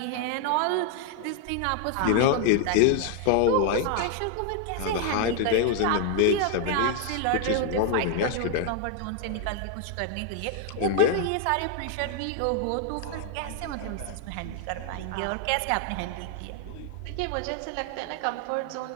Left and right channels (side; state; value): both; different; correlation 0.00